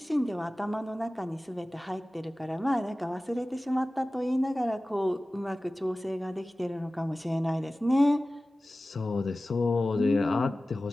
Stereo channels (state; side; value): normal; both; correlation 0.97